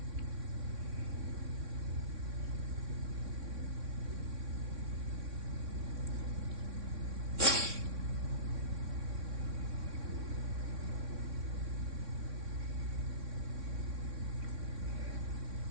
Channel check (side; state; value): left; late; 3.6 ms